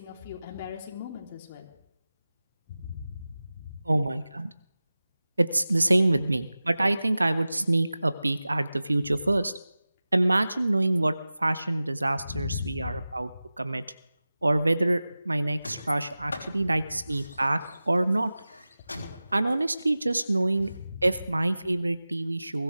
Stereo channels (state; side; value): inverted; both; correlation -0.96